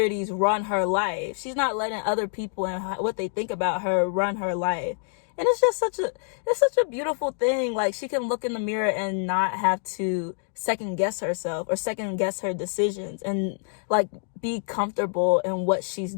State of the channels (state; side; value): silent; right; digital silence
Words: run her life. She's not letting other people and what they think about her run her life. And it's just such a beautiful thing. Like, she can look in the mirror and not have to second guess herself or second guess her decisions, and like be comfortable in what she's